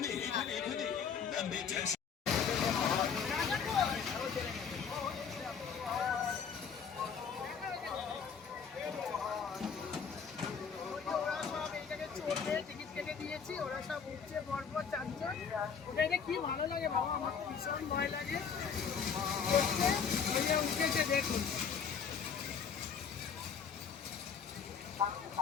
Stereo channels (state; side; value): quieter; right; 6.6 dB